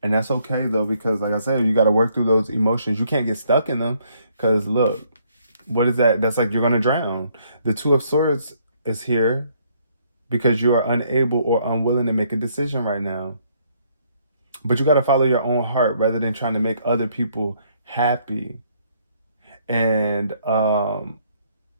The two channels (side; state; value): both; inverted; correlation -0.68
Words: And that's okay though, because like I said, you got to work through those emotions. You can't get stuck in them, because look, what is that? That's like you're going to drown. The 2 of Swords is here because you are unable or unwilling to make a decision right now. But you got to follow your own heart rather than trying to make other people happy. And